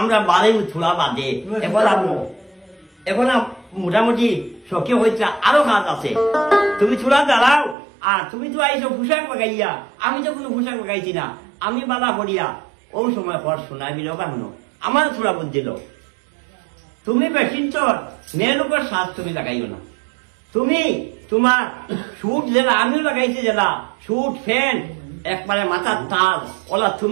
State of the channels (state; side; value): drops out; left; at 7.8 s